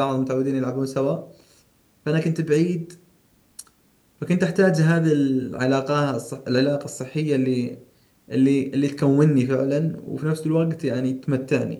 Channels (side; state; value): both; identical; correlation 1.00